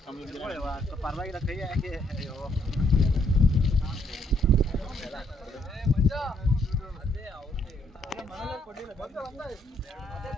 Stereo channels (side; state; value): both; normal; correlation 0.70